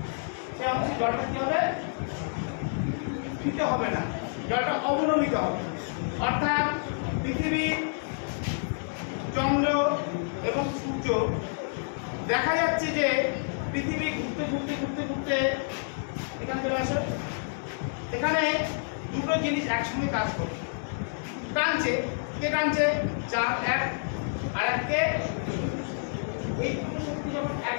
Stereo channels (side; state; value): right; silent; digital silence